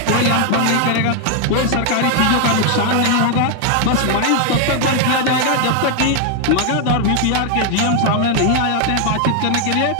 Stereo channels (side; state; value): both; different; correlation 0.00